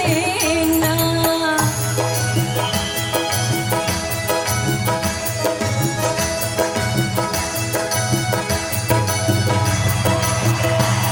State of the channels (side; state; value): both; identical; correlation 1.00